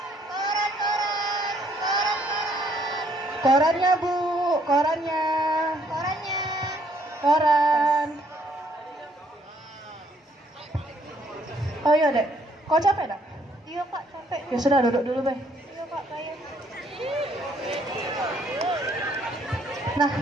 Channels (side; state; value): both; normal; correlation 0.67